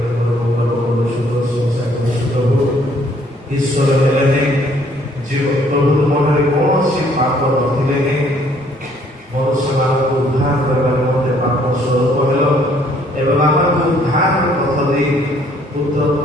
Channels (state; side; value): normal; both; correlation 0.63